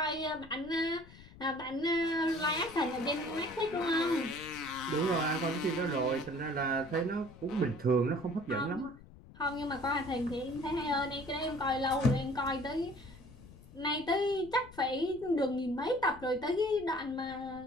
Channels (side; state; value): left; noise; rumble, 20 dB below the sound